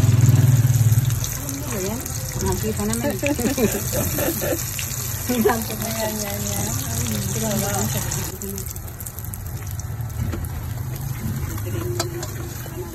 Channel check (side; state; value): both; identical; correlation 1.00